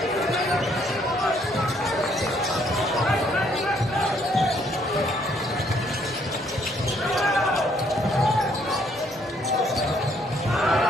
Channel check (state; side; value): normal; both; correlation 0.67